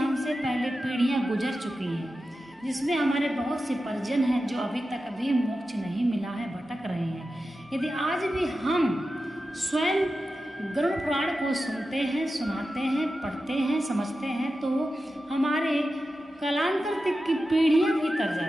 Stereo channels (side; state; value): both; normal; correlation 0.92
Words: पहले पीढ़ियां गुजर चुकी हैं, जिसमें हमारे बहुत से परिजन हैं जो अभी तक अभी मोक्ष नहीं मिला है, भटक रहे हैं। यदि आज भी हम स्वयं गरुड़ पुराण को सुनते हैं, सुनाते हैं, पढ़ते हैं, समझते हैं, तो हमारे कालांतर तक की पीढ़ियां भी तर